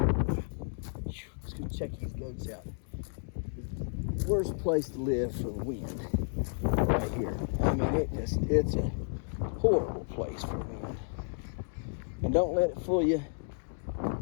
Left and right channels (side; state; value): right; silent; digital silence